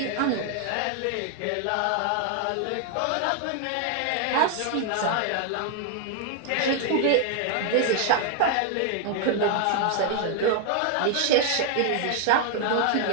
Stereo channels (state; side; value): different; both; correlation 0.00